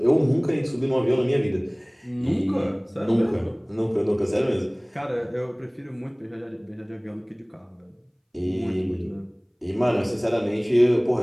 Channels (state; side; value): identical; both; correlation 1.00